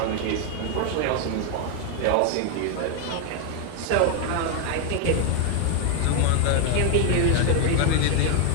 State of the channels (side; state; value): both; different; correlation 0.00